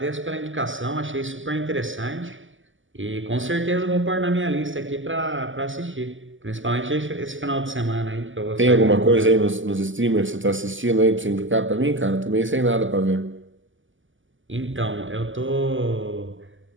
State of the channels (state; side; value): late; left; 0.57 ms